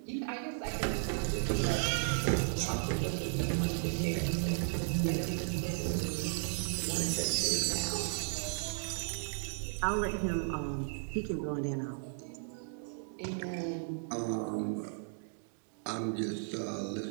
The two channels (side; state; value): left; silent; digital silence